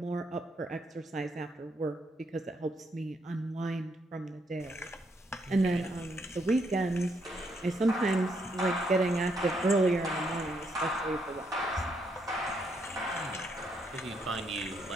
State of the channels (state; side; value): normal; both; correlation 0.75